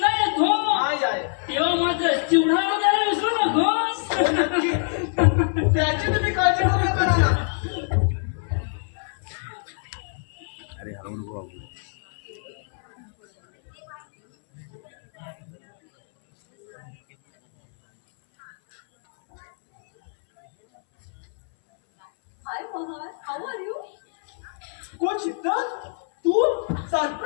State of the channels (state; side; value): silent; right; 62 dB below the other